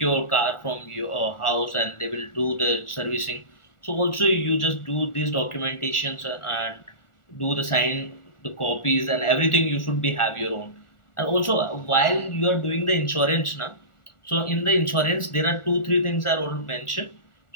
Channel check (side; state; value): right; late; 1.4 ms